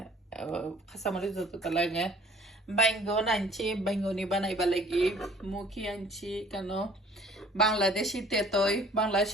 কাঁচামরিচ যতটা লাগে। বাইঙ্গন আনছি, বাইঙ্গনি বানাইবা লাগি। মুখি আনছি কেন বাংলাদেশি তেতই,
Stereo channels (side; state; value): both; normal; correlation 0.54